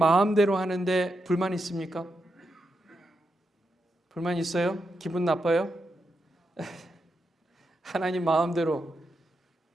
하는데 불만 있습니까? 불만 있어요? 기분 나빠요? 하나님 마음대로.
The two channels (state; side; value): normal; both; correlation 0.85